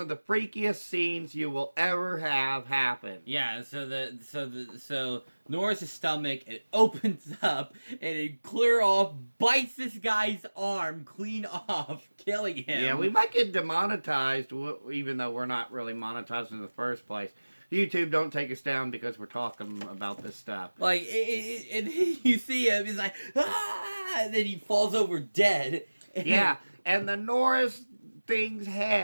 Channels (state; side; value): inverted; both; correlation -1.00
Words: the freakiest scenes you will ever have happen. Yeah, so Norris' stomach, it opens up and it clear off bites this guy's arm clean off, killing him. Yeah, we might get demonetized, even though we're not really monetized in the first place. YouTube, don't take us down because we're talking about this stuff. Like, and you see him, he's like, ah, and then he falls over dead. Yeah, and the Norris thing's